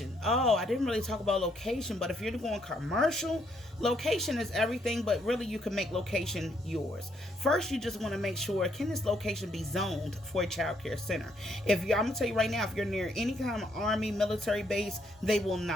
Oh, I didn't really talk about location, but if you're going commercial, location is everything, but really you can make location yours. First, you just want to make sure, can this location be zoned for a child care center? I'm going to tell you right now, if you're near any kind of army, military base, they will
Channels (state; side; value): normal; both; correlation 0.72